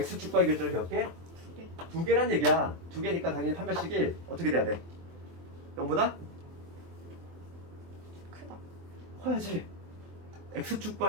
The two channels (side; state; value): left; late; 24 ms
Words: 교점이 몇 개? 두 개란 얘기야. 두 개니까 당연히 판별식이 어떻게 돼야 돼? 0보다? 크다. 커야지.